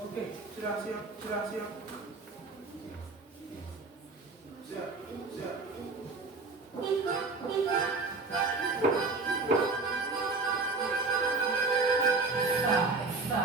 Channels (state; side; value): quieter; left; 3.8 dB